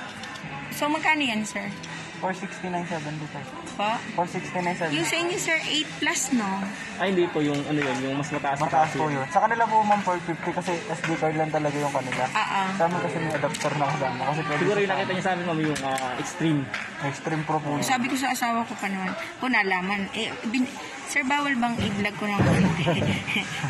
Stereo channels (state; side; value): identical; both; correlation 1.00